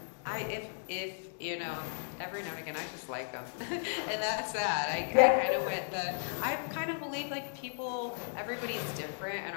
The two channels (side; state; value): right; silent; digital silence